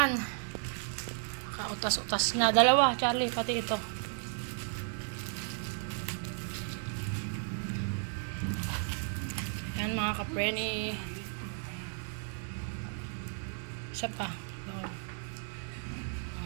Kautas-utas na. Dalawa, Charlie. Pati ito. Ayan mga kapreni. Isa pa.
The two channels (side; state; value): left; silent; 55 dB below the other